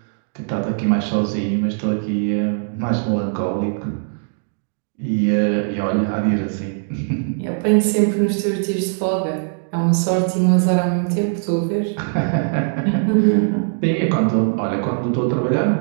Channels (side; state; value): left; silent; digital silence